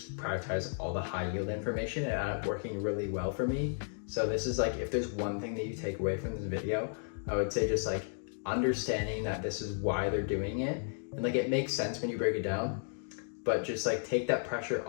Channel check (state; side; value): silent; right; digital silence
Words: prioritize all the high yield information, and it ended up working really well for me. So this is like, if there's one thing that you take away from this video, I would say just like understanding that this is why they're doing it, and like it makes sense when you break it down, but just like take that pressure